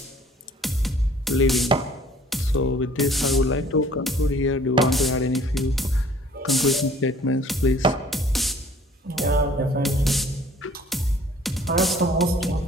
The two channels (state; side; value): normal; both; correlation 0.54